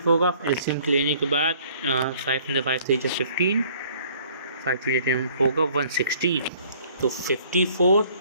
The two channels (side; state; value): both; inverted; correlation -0.57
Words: होगा। एलसीएम लेने के बाद 5 × 5 3 15, 5 होगा 160, तो 54